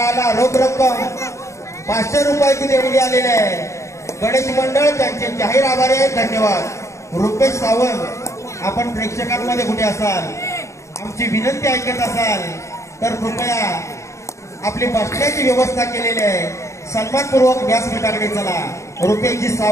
रोख रक्कम 500 रुपयाची देणगी आलेली आहे. गणेश मंडळ त्यांचे जाहीर आभारी आहे. धन्यवाद. रुपेश सावंत, आपण प्रेक्षकांमध्ये कुठे असाल, आमची विनंती ऐकत असाल तर कृपया आपली बसण्याची व्यवस्था केलेली आहे. सन्मानपूर्वक व्यासपीठाकडे चला. रुपेशजी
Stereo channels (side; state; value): right; late; 0.14 ms